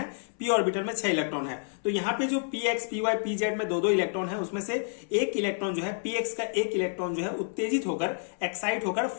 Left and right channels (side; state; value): right; silent; 59 dB below the other